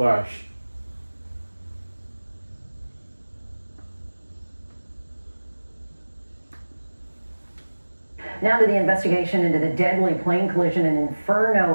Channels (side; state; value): both; inverted; correlation -1.00